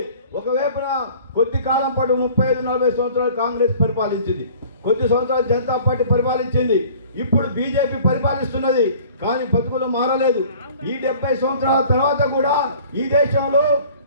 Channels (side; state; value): both; inverted; correlation -0.49